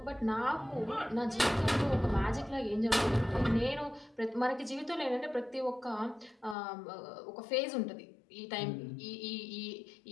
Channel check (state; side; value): drops out; right; at 6.6 s